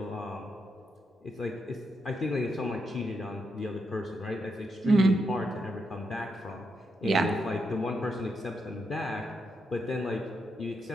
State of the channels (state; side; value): normal; both; correlation 0.82